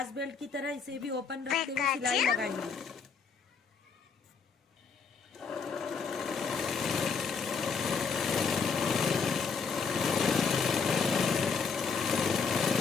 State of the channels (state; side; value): quieter; right; 5.5 dB